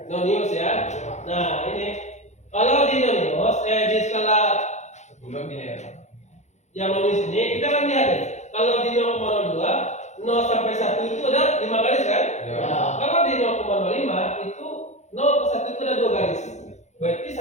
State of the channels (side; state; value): right; late; 0.33 ms